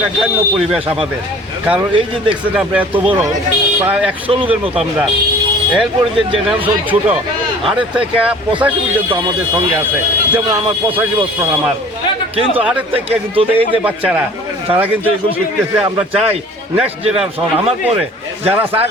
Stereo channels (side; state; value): both; normal; correlation 0.48